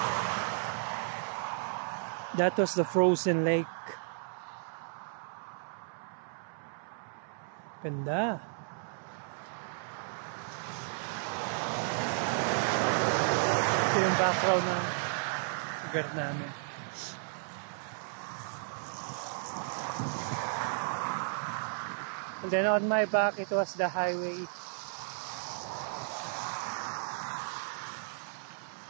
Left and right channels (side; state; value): left; silent; 55 dB below the other